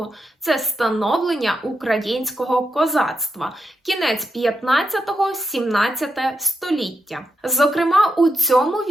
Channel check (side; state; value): both; normal; correlation 0.84